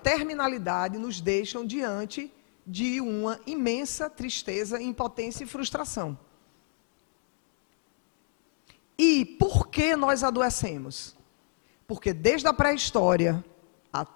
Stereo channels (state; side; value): silent; right; digital silence